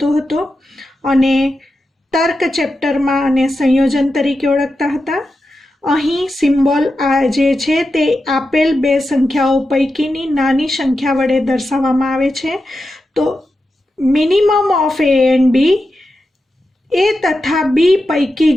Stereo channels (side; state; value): both; normal; correlation 0.89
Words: हतो अने तर्क चेप्टर में आने संयोजन तरीके ओळखता हता। अहीं सिम्बोल आ जे छे ते आपेल बे संख्याओं पैकीनी नानी संख्या वडे दर्शाववामां आवे छे। तो minimum of a and b, a तथा बी पैकी